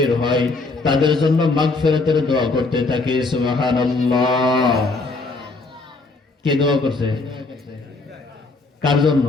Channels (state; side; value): quieter; right; 3.5 dB